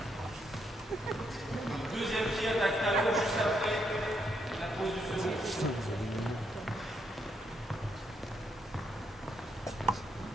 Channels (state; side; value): normal; both; correlation 0.77